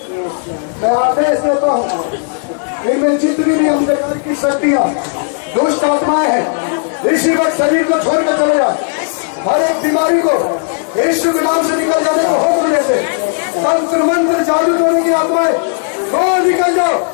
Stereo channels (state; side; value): silent; right; 62 dB below the other